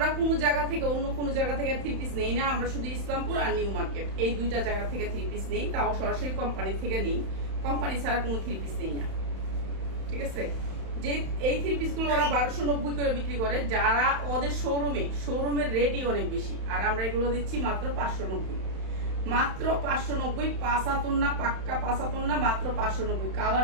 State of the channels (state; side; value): late; left; 31 ms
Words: কোনো জায়গা থেকে অন্য কোনো জায়গা থেকে 3 পিস নেই না। আমরা শুধু ইসলামপুর আর নিউ মার্কেট এই 2টা জায়গা থেকে 3 পিস নেই, তাও সরাসরি কোম্পানি থেকে নেই। কোম্পানি ছাড়া কোনো 3 পিস নেই না, ঠিক আছে। যে এই 3 পিস গুলো ওরা 1290 করে বিক্রি করে, যারা ওদের শোরুমের রেটই অনেক বেশি। আর আমরা এগুলো দিচ্ছি মাত্র 590, মাত্র 590। 5 হাতন না, পাক্কা 5 হাতন না, মাত্র 590।